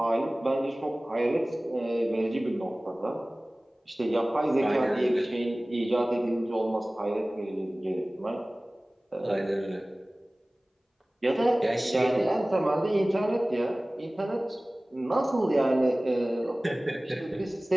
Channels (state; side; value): normal; both; correlation 0.98